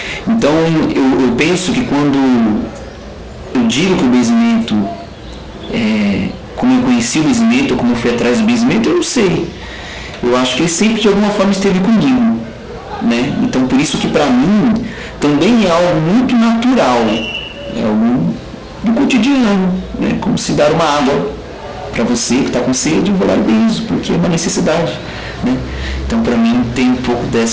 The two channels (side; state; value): both; identical; correlation 1.00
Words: Então eu penso que quando eu digo que o benzimento, como eu conheci o benzimento, ou como eu fui atrás do benzimento, eu não sei. Eu acho que ele sempre de alguma forma esteve comigo, né? Então por isso que para mim também é algo muito natural, é algo do cotidiano, né? Como se dar uma água para você que está com sede, eu vou lá e benzo, porque é uma necessidade, né? Então para mim tem um pouco